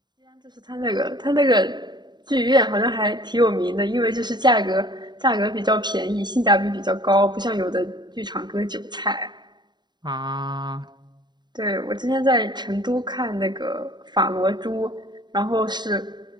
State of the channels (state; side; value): late; left; 0.21 ms